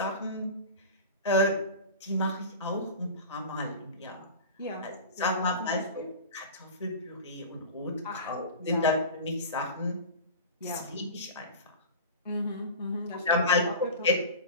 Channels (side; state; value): both; inverted; correlation -0.32